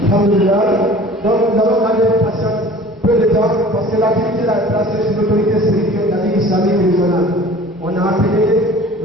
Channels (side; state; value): both; normal; correlation 0.46